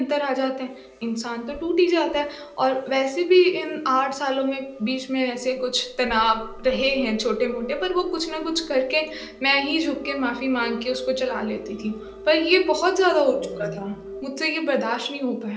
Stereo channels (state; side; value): identical; both; correlation 1.00